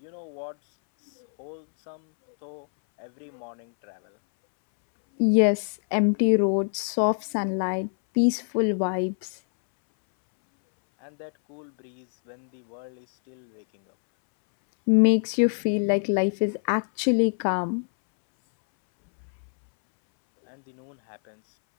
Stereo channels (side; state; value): right; silent; 61 dB below the other